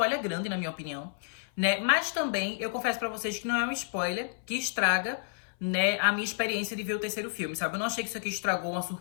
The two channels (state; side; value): silent; right; 58 dB below the other